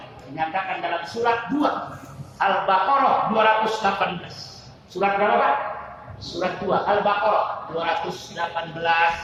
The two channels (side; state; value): both; identical; correlation 1.00